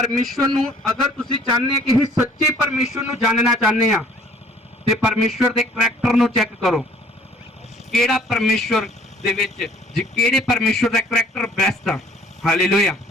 ਨੂੰ ਅਗਰ ਤੁਸੀਂ ਚਾਹੁੰਦੇ ਕਿ ਅਸੀਂ ਸੱਚੇ ਪਰਮੇਸ਼ਵਰ ਨੂੰ ਜਾਣਨਾ ਚਾਹੁੰਦੇ ਆ, ਤੇ ਪਰਮੇਸ਼ਵਰ ਦੇ ਕਰੈਕਟਰ ਨੂੰ ਚੈੱਕ ਕਰੋ। ਕਿਹੜਾ ਪਰਮੇਸ਼ਵਰ ਦੇ ਵਿੱਚ ਕਿਹੜੇ ਪਰਮੇਸ਼ਵਰ ਦਾ ਕਰੈਕਟਰ ਬੈਸਟ ਆ? ਹਾਲੇਲੂਇਆ।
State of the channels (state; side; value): normal; both; correlation 0.56